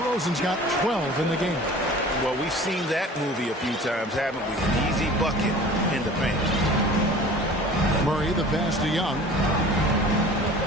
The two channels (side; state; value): both; normal; correlation 0.43